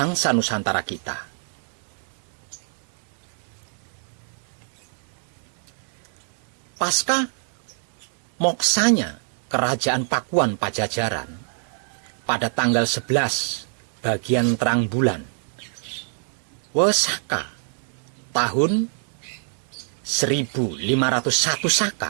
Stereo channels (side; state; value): left; silent; 61 dB below the other